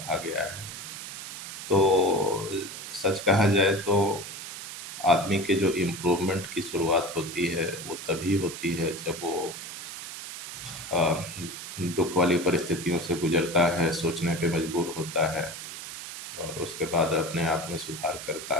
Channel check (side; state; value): right; noise; hiss, 10 dB below the sound